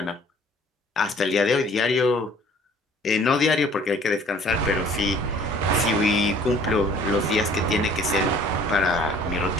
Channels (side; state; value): both; normal; correlation 0.53